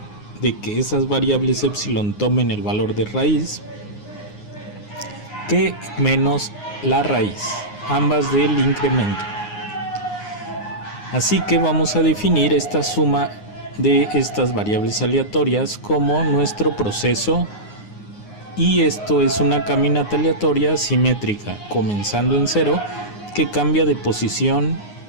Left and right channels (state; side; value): late; right; 9.6 ms